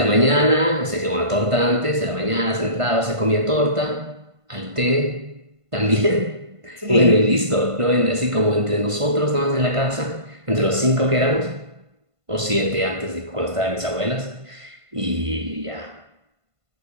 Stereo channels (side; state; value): left; late; 1.5 ms